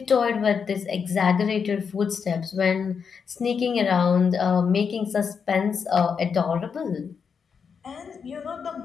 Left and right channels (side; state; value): right; quieter; 6.3 dB